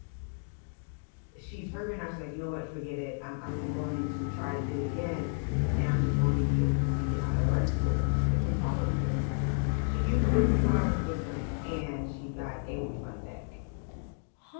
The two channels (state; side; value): silent; right; 57 dB below the other